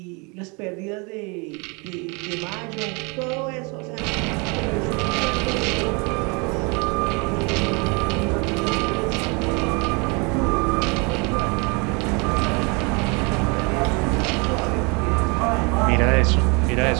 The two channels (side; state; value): left; quieter; 30.7 dB